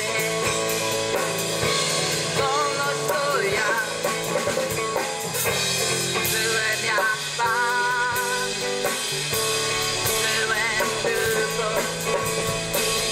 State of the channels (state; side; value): identical; both; correlation 1.00